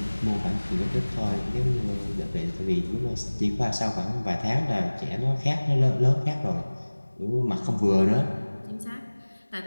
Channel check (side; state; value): both; inverted; correlation -1.00